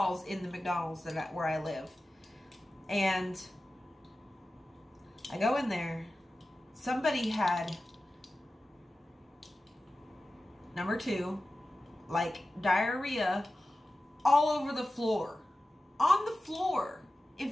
in the McDonald's where I live. And I go in there. Somebody had, number 2, like diarrhea all over the floor. On the floor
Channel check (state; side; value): normal; both; correlation 0.95